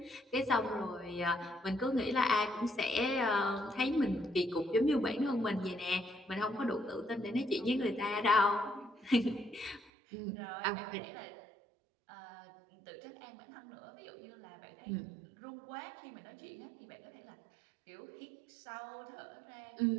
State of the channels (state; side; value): drops out; left; at 9.9 s